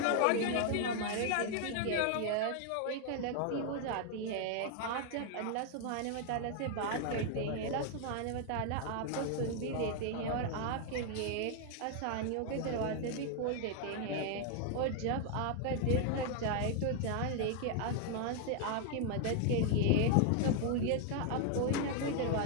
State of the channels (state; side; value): different; both; correlation 0.00